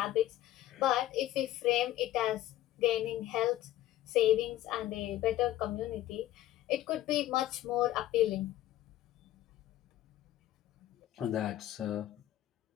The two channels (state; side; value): quieter; right; 14.0 dB